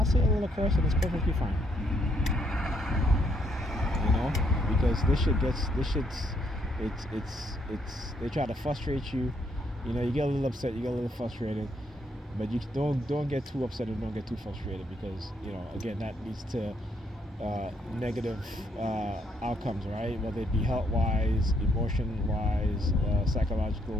say a little curse and it's perfectly fine, because they try to frustrate you, you get a little upset, you get a little frustrated, but you don't get too upset and don't get too frustrated because, again, that leads to negative outcomes, right? Whether it be health-wise, emotion-wise,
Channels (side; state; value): both; normal; correlation 0.73